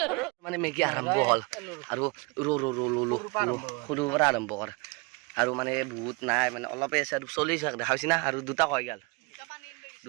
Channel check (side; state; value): left; quieter; 28.6 dB